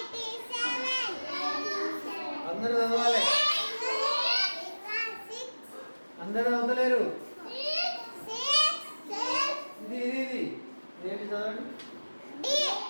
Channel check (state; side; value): inverted; both; correlation -1.00